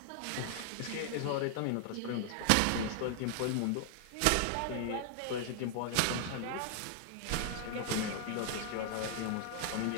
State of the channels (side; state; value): both; different; correlation 0.00